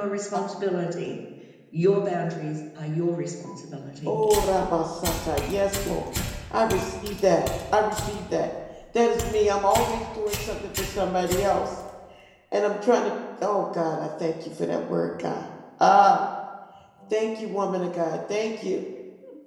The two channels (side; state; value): both; identical; correlation 1.00